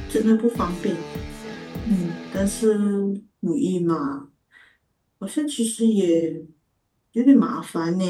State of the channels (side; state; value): both; identical; correlation 1.00